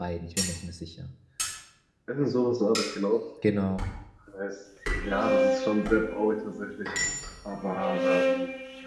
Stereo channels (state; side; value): identical; both; correlation 1.00